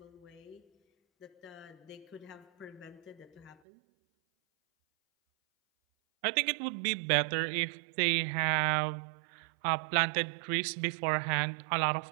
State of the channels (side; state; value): left; drops out; at 3.6 s